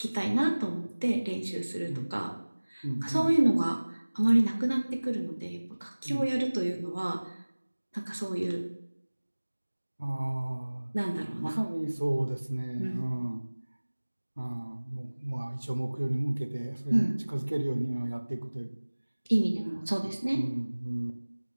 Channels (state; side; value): inverted; both; correlation -1.00